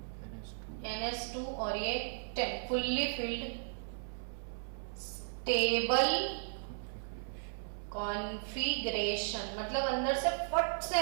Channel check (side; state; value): left; silent; 54 dB below the other